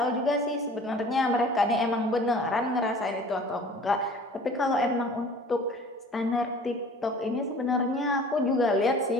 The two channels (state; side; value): normal; both; correlation 0.46